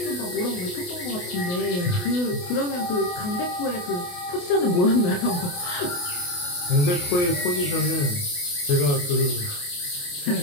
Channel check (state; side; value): late; right; 28 ms